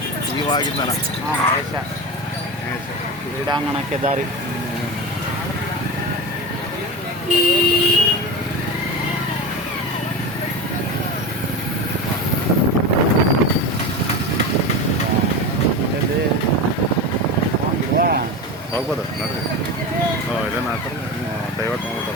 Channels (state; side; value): normal; both; correlation 0.24